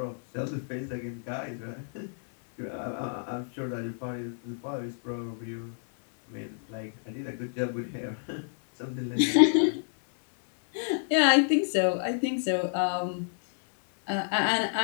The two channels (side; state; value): right; silent; digital silence